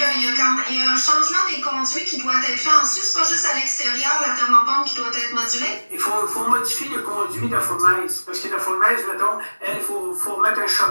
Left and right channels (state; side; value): inverted; both; correlation -1.00